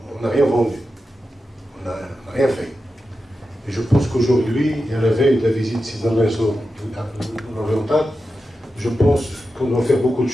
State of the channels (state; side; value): normal; both; correlation 0.90